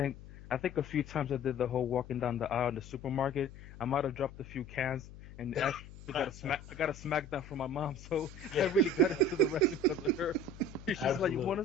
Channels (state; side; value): noise; left; hum, 16 dB below the sound